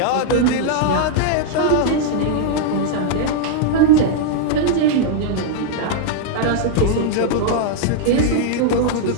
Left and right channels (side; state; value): both; different; correlation -0.01